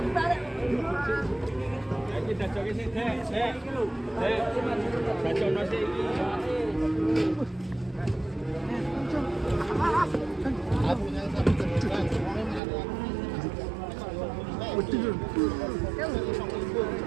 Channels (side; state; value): left; drops out; at 12.6 s